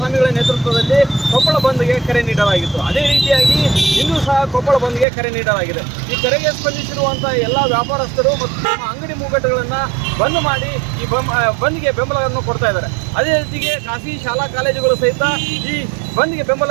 ನೇತೃತ್ವದಲ್ಲಿ ಕೊಪ್ಪಳ ಬಂದ್ಗೆ ಕರೆ ನೀಡಲಾಗಿತ್ತು. ಅದೇ ರೀತಿಯಾಗಿ ಇಂದು ಸಹ ಕೊಪ್ಪಳ ಬಂದ್ಗೆ ಕರೆ ನೀಡಲಾಗಿದೆ. ಈ ಕರೆಗೆ ಸ್ಪಂದಿಸಿರುವಂಥ ಎಲ್ಲ ವ್ಯಾಪಾರಸ್ಥರು ಮತ್ತು ತಮ್ಮ ಅಂಗಡಿ ಮುಂಗಟ್ಟುಗಳನ್ನು ಬಂದ್ ಮಾಡಿ ಈ ಬಂದ್ಗೆ ಬೆಂಬಲವನ್ನು ಕೊಡ್ತಾ ಇದ್ದಾರೆ. ಅದೇ ರೀತಿಗೆ ಖಾಸಗಿ ಶಾಲಾ ಕಾಲೇಜುಗಳು ಸಹಿತ ಈ ಬಂದ್ಗೆ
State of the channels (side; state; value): left; drops out; at 5.1 s